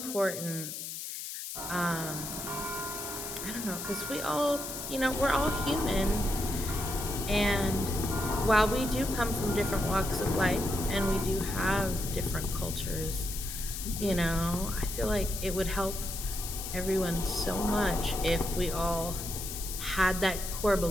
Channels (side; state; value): left; noise; hiss, 7 dB below the sound